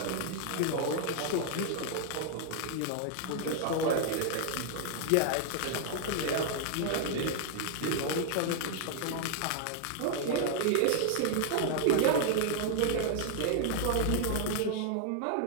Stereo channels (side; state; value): both; different; correlation -0.01